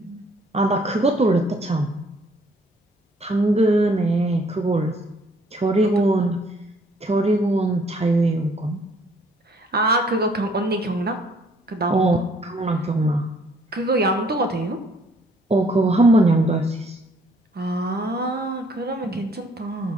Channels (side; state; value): both; normal; correlation 0.63